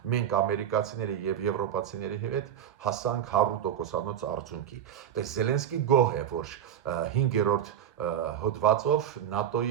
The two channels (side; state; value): left; quieter; 9.6 dB